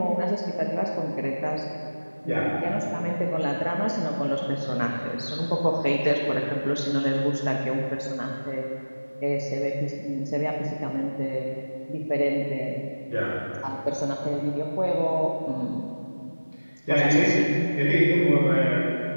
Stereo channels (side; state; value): both; inverted; correlation -1.00